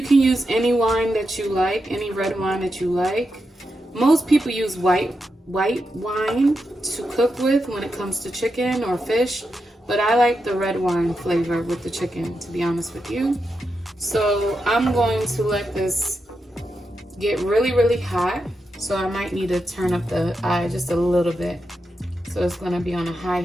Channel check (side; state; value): both; normal; correlation 0.86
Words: can use any wine that you like, any red wine that you like. Most people use white wine to cook with when it comes to chicken or fish, but I like the red wine flavor with the chicken, to be honest with you. So I'm going to let this get really, really hot. So I might need to turn up the eye just a little bit. So it's going to be on a high